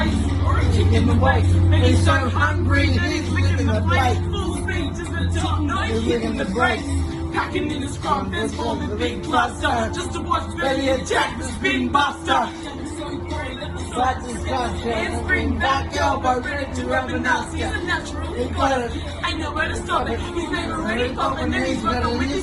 or a kick in the waist. And he's so hungry, and he's licking the plate. Full speed to the top, no hitting the brakes. Packing in his scrum, there's forming a big cluster. Just to watch Benny attack the spin buster. But discussion, Handspring back elbow, ready to rub an ass. He's a natural, he got it. Ain't nowhere to stop it. He's never ready popping, and he's rocking with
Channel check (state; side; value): identical; both; correlation 1.00